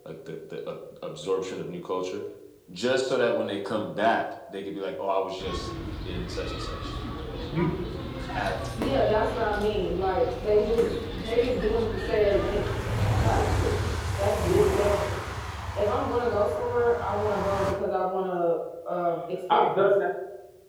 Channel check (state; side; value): identical; both; correlation 1.00